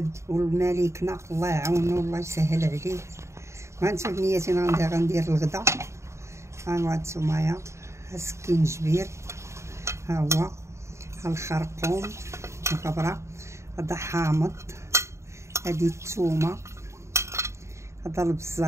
والملكنا الله يعاونو والله يسهل عليه. وهانتو بنياتي غندير الغدا. ها هانتومايا سكين جبير، ها هو ها الخرقوم الغبره، هذا حامض، هادي الثومه، هذا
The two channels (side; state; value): left; late; 0.14 ms